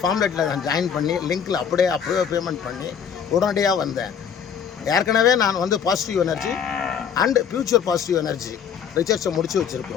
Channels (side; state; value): right; quieter; 7.6 dB